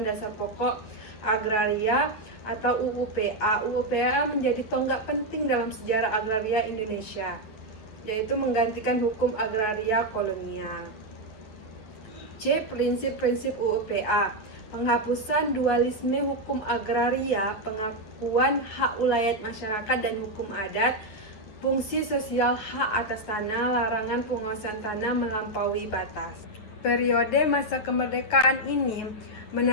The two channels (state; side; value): late; right; 9.8 ms